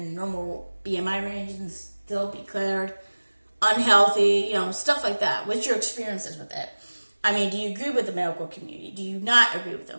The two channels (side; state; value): both; inverted; correlation -1.00